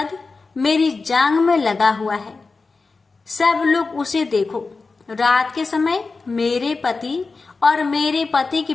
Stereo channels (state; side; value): quieter; right; 4.1 dB